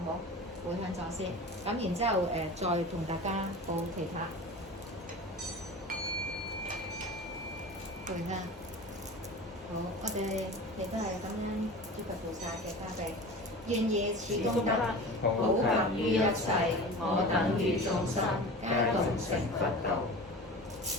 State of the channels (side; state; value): both; normal; correlation 0.34